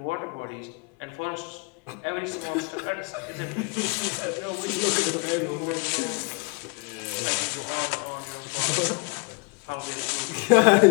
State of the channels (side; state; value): right; quieter; 31.9 dB